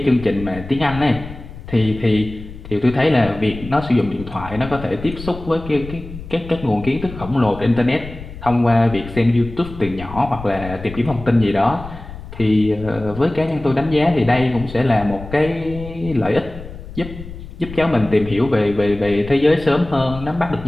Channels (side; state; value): left; noise; rumble, 13 dB below the sound